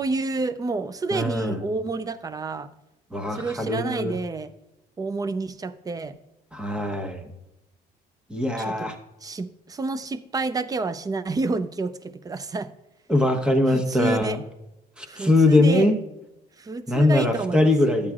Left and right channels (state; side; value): normal; both; correlation 0.74